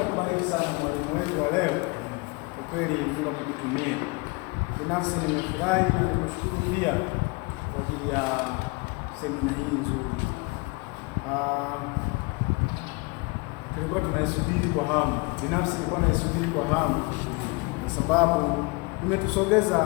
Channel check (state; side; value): quieter; right; 27.8 dB